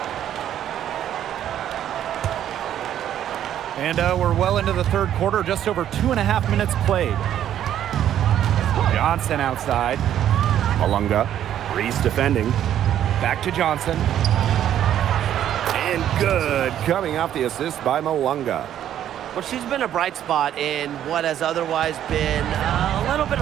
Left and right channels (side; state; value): left; quieter; 10.8 dB